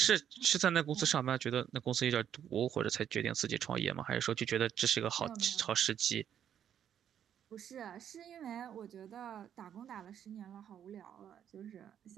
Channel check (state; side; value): quieter; left; 9.4 dB